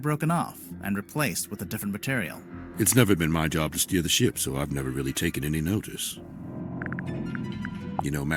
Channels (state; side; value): identical; both; correlation 1.00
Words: broken off and replaced with a different material. It's never been my job to steer the ship, so I've never really taken any notice. You know,